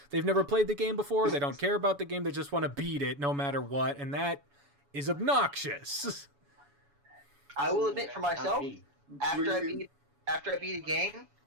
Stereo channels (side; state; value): left; late; 7.1 ms